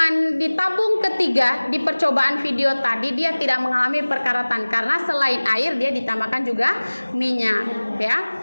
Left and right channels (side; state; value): both; inverted; correlation -1.00